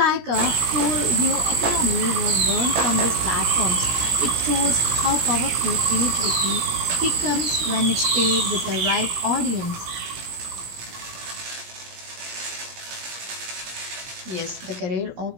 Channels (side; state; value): left; late; 17 ms